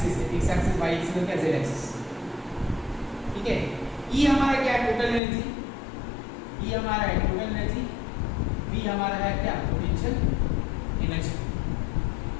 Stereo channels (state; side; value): drops out; right; at 5.2 s